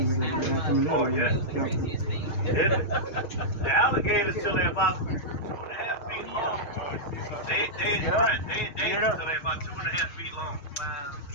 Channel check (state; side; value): late; right; 6.5 ms